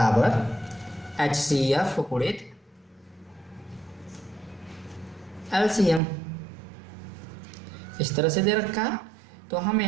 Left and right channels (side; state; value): left; drops out; at 6.0 s